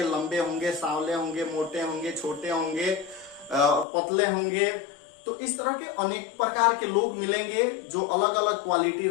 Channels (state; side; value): drops out; right; at 3.9 s